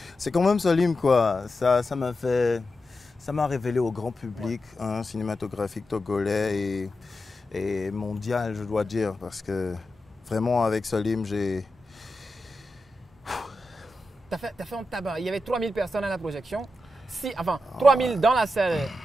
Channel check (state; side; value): normal; both; correlation 0.89